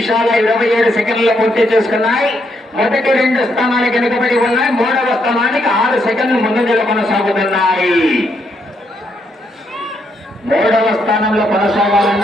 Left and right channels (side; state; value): both; normal; correlation 0.77